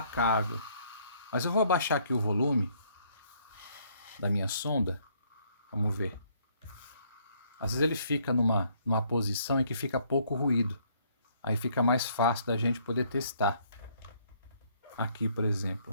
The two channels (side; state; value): both; inverted; correlation -0.66